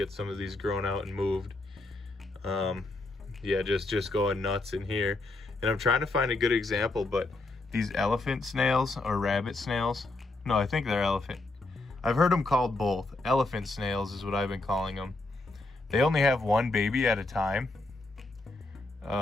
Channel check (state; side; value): quieter; right; 3.1 dB